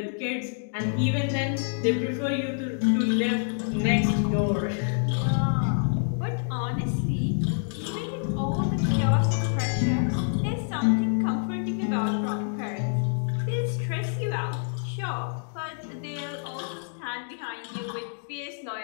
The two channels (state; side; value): silent; right; digital silence